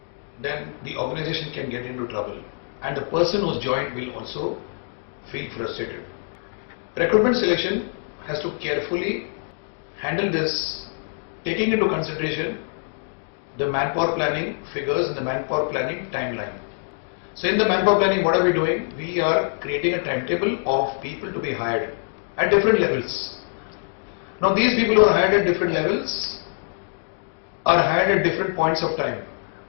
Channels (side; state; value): right; silent; digital silence